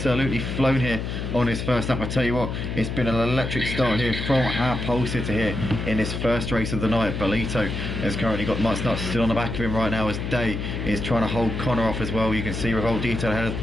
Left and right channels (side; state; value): left; noise; hum, 4 dB below the sound